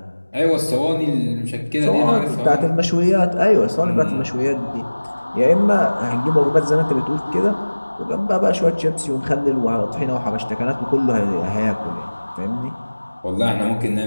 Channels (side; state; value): both; inverted; correlation -1.00